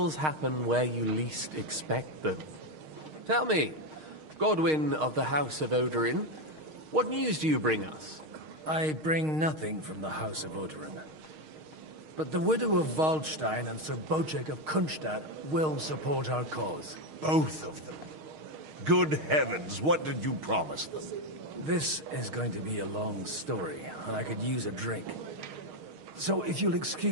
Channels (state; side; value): late; left; 6.4 ms